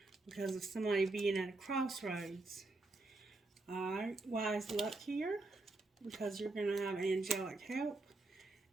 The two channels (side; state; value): left; quieter; 3.2 dB